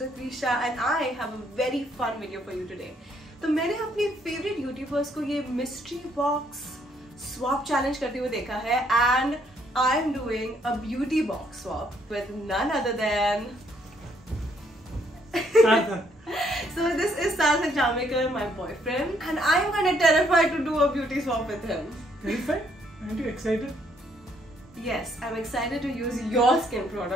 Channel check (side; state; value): both; normal; correlation 0.69